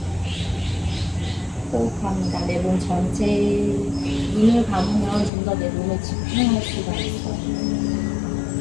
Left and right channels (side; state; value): right; drops out; at 5.3 s